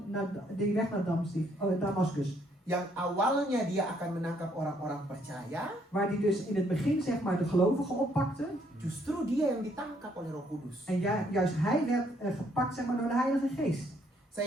die weg naar Damascus. Yang awalnya dia akan menangkap orang-orang percaya, Waar hij dus in het begin, zeg maar, de gelovigen oppakte. justru dia yang ditangkap oleh Roh Kudus. En juist hij werd gepakt, zeg maar, door de Heilige Geest.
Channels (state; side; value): normal; both; correlation 0.69